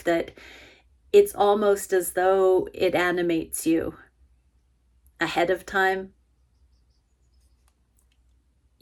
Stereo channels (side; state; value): both; identical; correlation 1.00